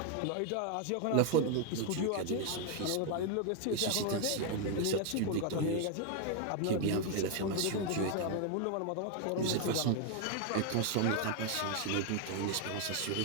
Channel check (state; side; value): different; both; correlation 0.01